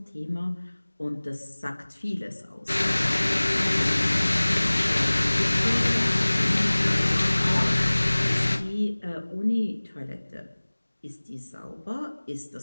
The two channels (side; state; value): both; inverted; correlation -1.00